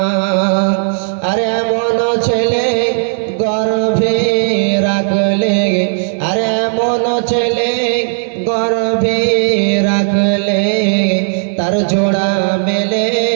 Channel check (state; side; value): silent; left; digital silence